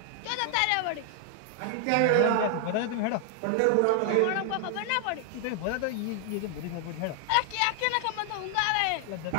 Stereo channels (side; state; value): both; different; correlation 0.00